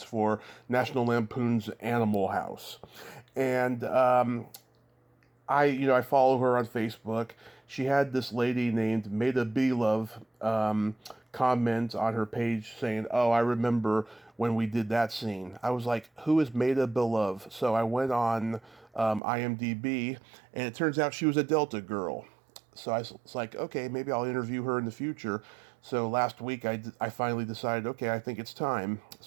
for National Lampoon's Animal House. And I follow her on Facebook. She had this lady named Maida Belove comment on her page saying, "Oh, I remember when we did that scene." I was like, "Who is Maida Belove?" So I went on IMDb, and it turns out she was a Delta girl. So I was like, okay, maybe I'll interview her in the future. So last week I finally decided, okay, I think it's time.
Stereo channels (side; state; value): left; drops out; at 19.2 s